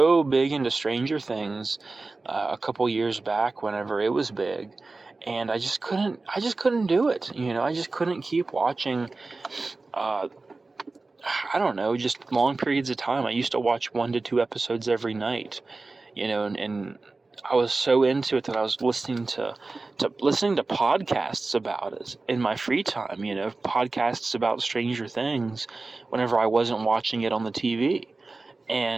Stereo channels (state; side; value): quieter; left; 3.6 dB